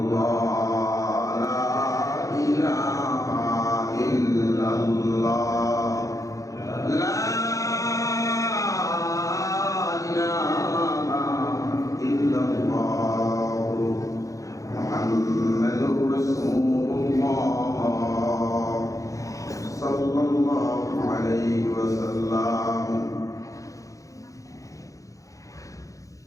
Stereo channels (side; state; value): right; late; 0.16 ms